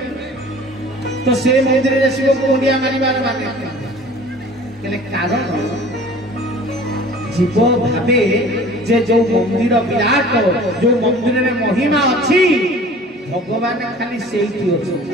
तो से मंदिर रे शिव को मुंडिया मारिबार माने केले कारण जीव भावे जे जो मंदिर विराट जो मंदिर में महिमा अच्छी भगवान खाली सेठी अछि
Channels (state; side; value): normal; both; correlation 0.46